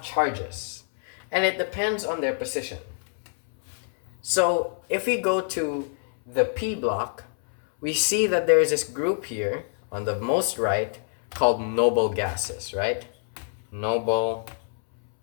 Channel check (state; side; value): silent; right; 61 dB below the other